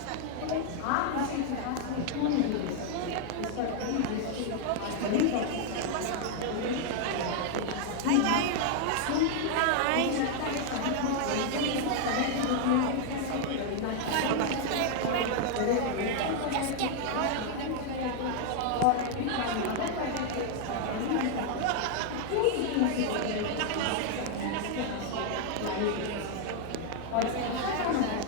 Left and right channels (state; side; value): different; both; correlation 0.00